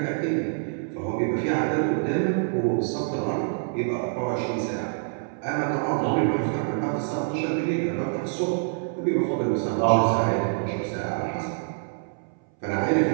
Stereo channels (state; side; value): silent; left; 61 dB below the other